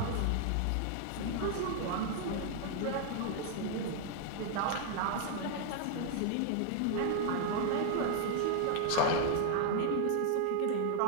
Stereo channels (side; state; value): both; different; correlation 0.00